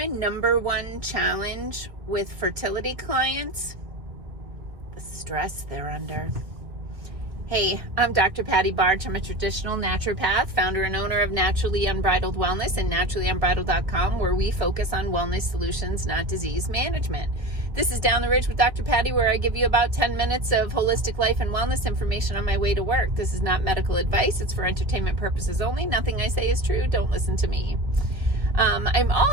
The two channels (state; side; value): late; left; 1.4 ms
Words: number one challenge with fertility clients? The stress they're under. Hey, I'm Dr. Patty Barch. I'm a traditional naturopath, founder and owner of Naturally Unbridled Wellness and naturallyunbridled.com, where we focus on wellness solutions, not disease management. This is Down the Ridge with Dr. Patty, where I give you about 10 minutes of holistic life and wellness information on my way to work. This is not medical advice. It's for entertainment purposes only. Nothing I say is true. Don't listen to me. I'm